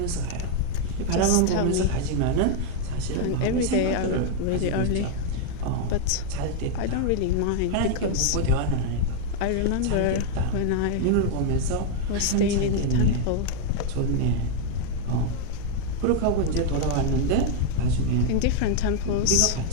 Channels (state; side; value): different; both; correlation 0.00